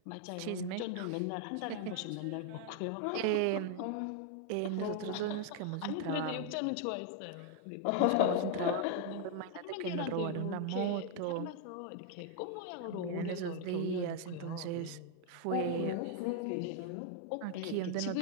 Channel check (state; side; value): different; both; correlation 0.00